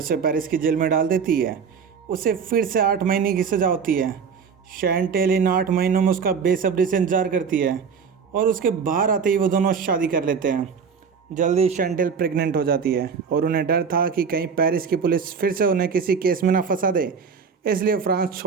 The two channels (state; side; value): quieter; left; 6.1 dB